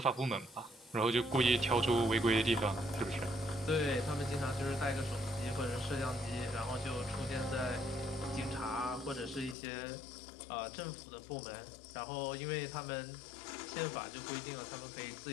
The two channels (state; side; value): drops out; right; at 9.6 s